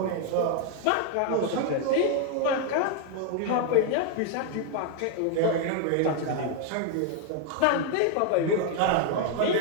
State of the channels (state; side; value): different; both; correlation 0.01